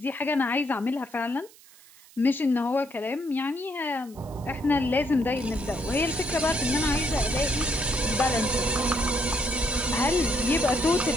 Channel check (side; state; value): right; noise; hiss, 24 dB below the sound